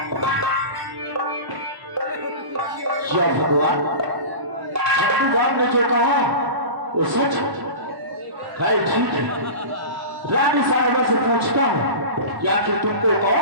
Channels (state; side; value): late; left; 1.1 ms